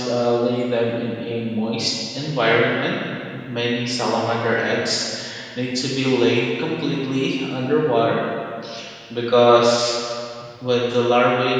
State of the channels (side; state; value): both; identical; correlation 1.00